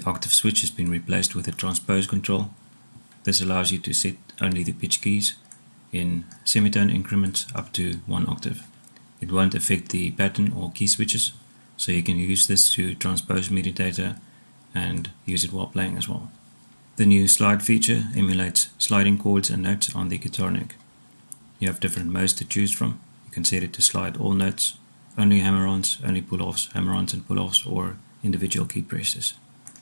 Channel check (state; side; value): inverted; both; correlation -1.00